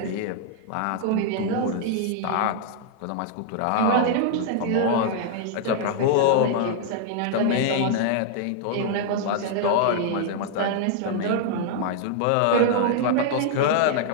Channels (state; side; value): different; both; correlation -0.01